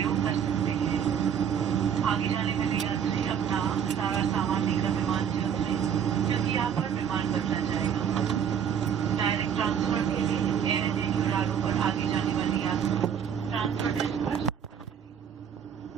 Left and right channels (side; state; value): left; quieter; 8.2 dB